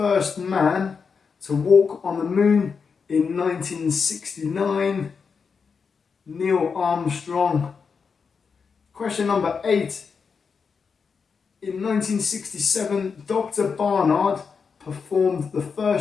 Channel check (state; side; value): quieter; right; 5.6 dB